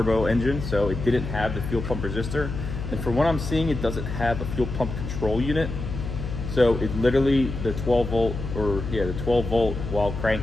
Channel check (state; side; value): noise; left; hum, 6 dB below the sound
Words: engine, so it didn't have the fuel pump resistor. And from what I'm seeing, it doesn't have a fuel pump control unit. So it literally, the 12 volt while